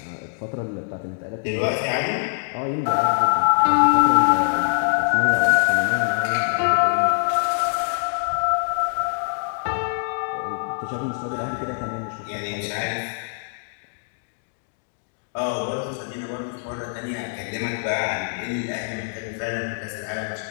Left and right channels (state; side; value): silent; right; digital silence